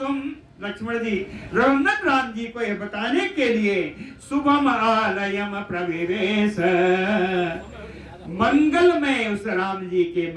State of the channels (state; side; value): identical; both; correlation 1.00